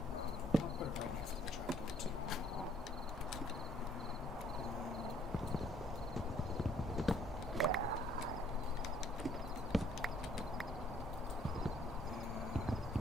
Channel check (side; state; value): both; normal; correlation 0.62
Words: I'll put it right next to the trapdoor too.